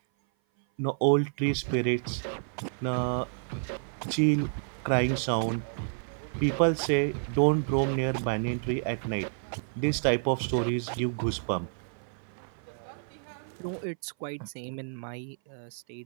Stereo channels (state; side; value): silent; left; 56 dB below the other